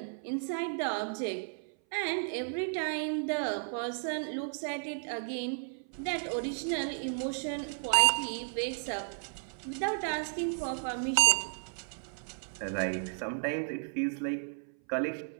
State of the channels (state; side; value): silent; left; 55 dB below the other